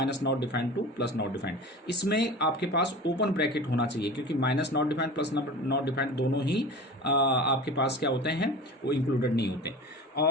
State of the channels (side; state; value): both; normal; correlation 0.34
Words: -not defined to +not defined. इसमें आपके पास ओपन ब्रैकेट होना चाहिए, क्योंकि -नॉट डिफाइंड +नॉट डिफाइंड दोनों ही आपके पास क्या होते हैं, वो इंक्लूडेड नहीं होते।